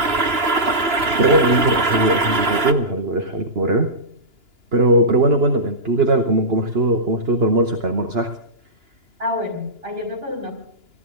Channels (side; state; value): left; late; 2.9 ms